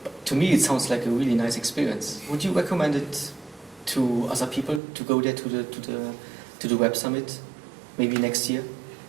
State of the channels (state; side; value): drops out; left; at 4.8 s